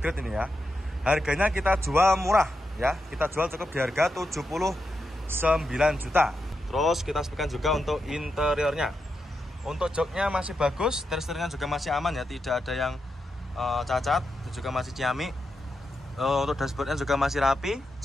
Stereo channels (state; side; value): normal; both; correlation 0.86